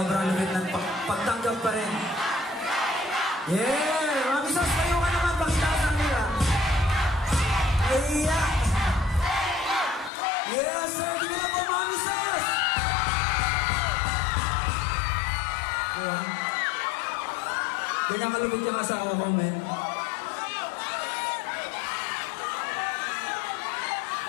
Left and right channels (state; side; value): drops out; right; at 10.1 s